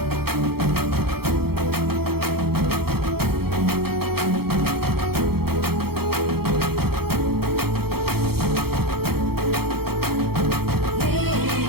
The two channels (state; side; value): late; left; 0.95 ms